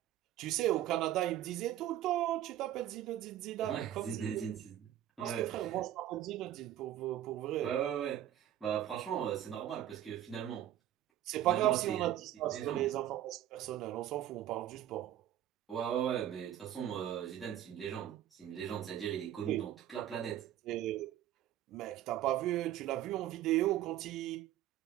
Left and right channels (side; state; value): left; quieter; 12.1 dB